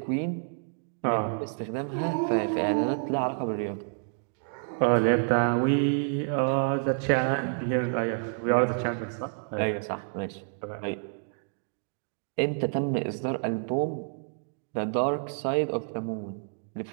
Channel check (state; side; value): silent; left; 59 dB below the other